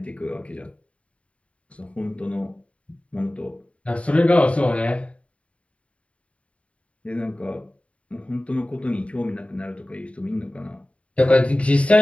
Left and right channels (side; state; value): right; late; 0.064 ms